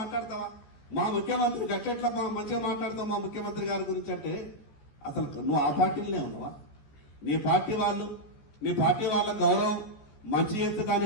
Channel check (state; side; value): late; right; 14 ms